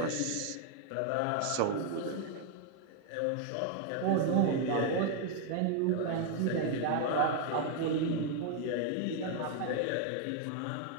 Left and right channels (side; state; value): both; different; correlation 0.00